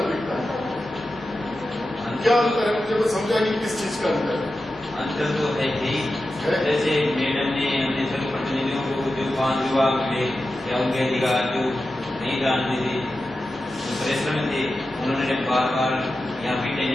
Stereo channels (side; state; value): both; normal; correlation 0.92